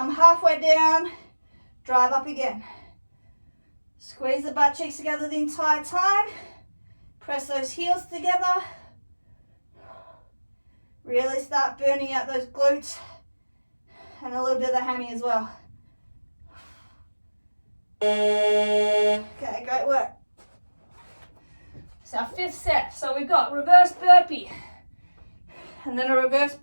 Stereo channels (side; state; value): both; inverted; correlation -1.00